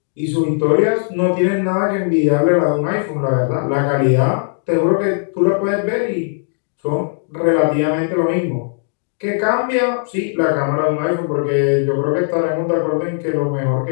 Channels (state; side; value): silent; right; digital silence